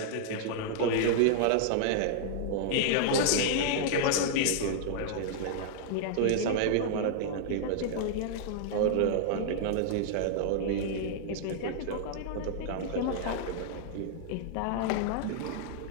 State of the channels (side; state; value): both; different; correlation -0.01